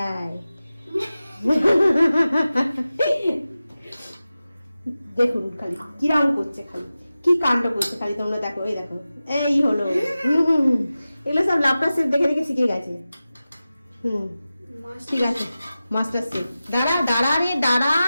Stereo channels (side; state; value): both; inverted; correlation -0.95